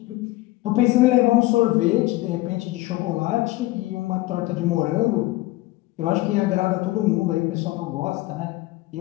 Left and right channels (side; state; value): right; quieter; 18.5 dB